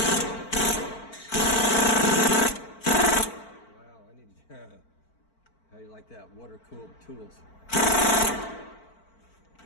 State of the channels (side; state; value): right; late; 4.5 ms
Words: Wow, I need how you like that? Water-cooled tools.